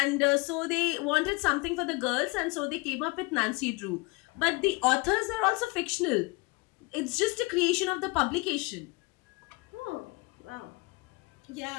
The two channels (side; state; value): right; quieter; 26.3 dB